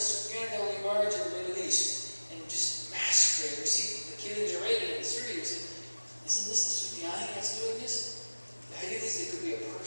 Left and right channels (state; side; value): inverted; both; correlation -1.00